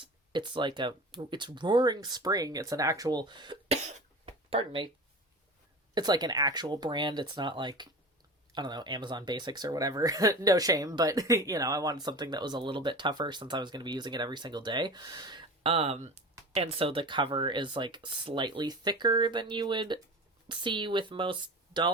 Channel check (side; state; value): both; normal; correlation 0.34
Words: like it's Roaring Spring. It's an actual pardon me. It's like an actual brand. It's not like, I don't know, Amazon Basics or whatever. No shame, but I wanted something that was a little bit tougher since I was going to be using it every single day. And so the cover is like slightly thicker than you would see with most